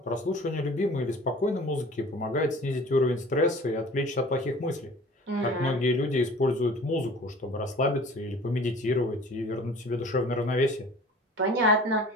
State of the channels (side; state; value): both; normal; correlation 0.45